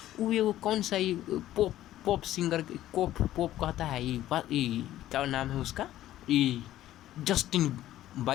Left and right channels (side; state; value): right; quieter; 13.7 dB